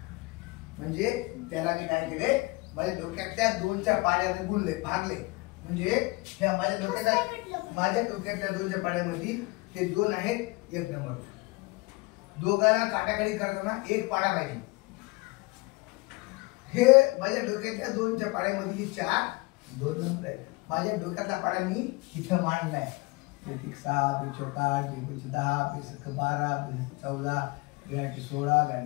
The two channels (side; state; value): right; quieter; 24.5 dB